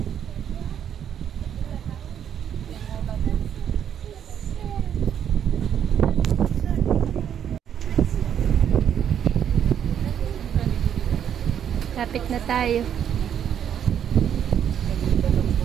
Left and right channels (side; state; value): left; quieter; 9.0 dB